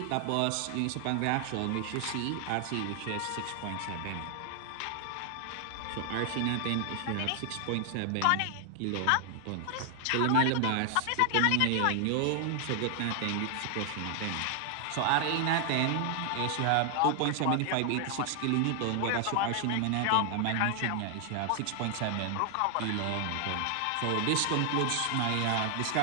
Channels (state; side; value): different; both; correlation 0.00